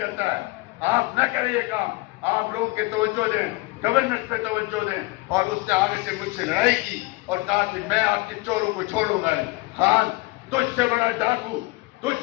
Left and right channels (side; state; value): right; quieter; 22.6 dB